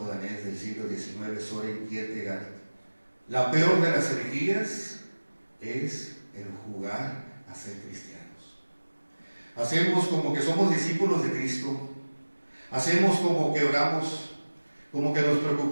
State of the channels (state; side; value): inverted; both; correlation -1.00